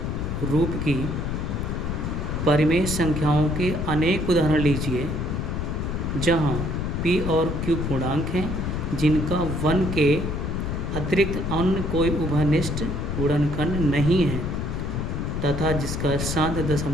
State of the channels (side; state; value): left; noise; rumble, 2 dB below the sound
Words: रूप की परिमेय संख्याओं के अनेक उदाहरण लीजिए जहाँ P और Q पूर्णांक हैं जिनका 1 के अतिरिक्त अन्य कोई उभयनिष्ठ गुणनखंड नहीं है तथा जिसका शांत